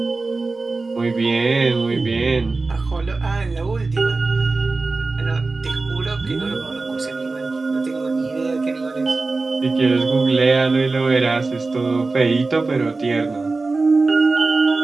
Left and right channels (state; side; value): quieter; left; 3.7 dB